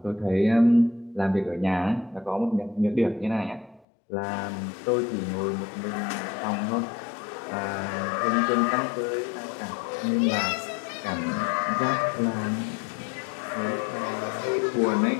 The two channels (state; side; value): drops out; right; at 3.8 s